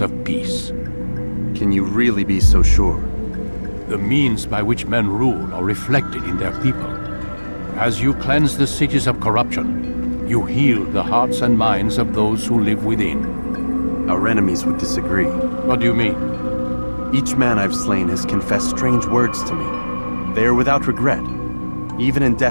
of peace. Can you really be so sure? The means by which men rule are reflected in their people. As you cleanse the cities of corruption, you heal the hearts and minds of those who live within. Our enemies would disagree. What do you mean? Each man I've slain has confessed strange words to me. They are without regret. Even in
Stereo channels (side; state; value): both; inverted; correlation -1.00